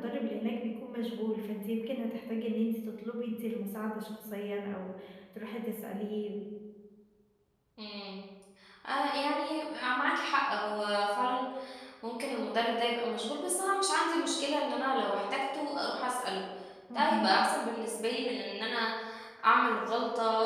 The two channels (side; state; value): both; identical; correlation 1.00